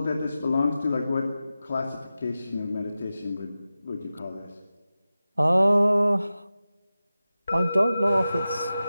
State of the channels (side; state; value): both; inverted; correlation -0.94